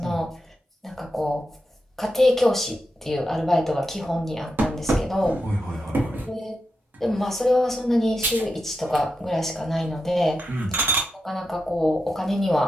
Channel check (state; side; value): normal; both; correlation 0.87